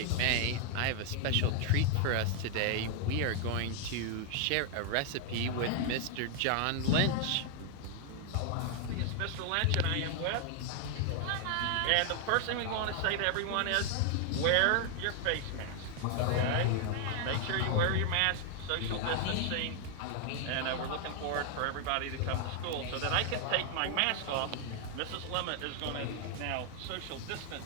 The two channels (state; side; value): different; both; correlation 0.00